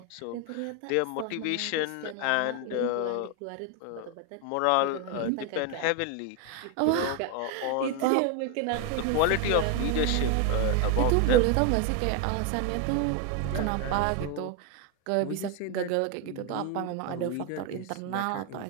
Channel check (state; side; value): different; both; correlation 0.01